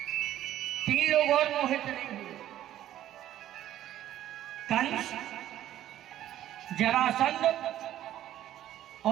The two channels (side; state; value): left; quieter; 12.6 dB